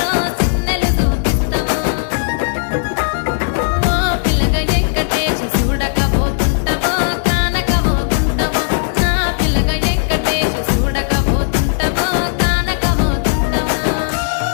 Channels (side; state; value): right; silent; digital silence